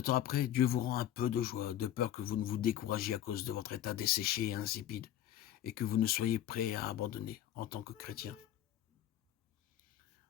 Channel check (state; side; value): quieter; right; 11.8 dB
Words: après, Dieu vous rend un peu de joie, de peur que vous ne vous découragiez à cause de votre état desséché et insipide, et que vous ne soyez prêt à abandonner en tant que chrétien.